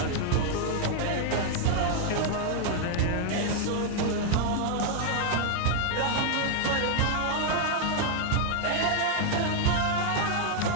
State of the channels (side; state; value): both; different; correlation 0.00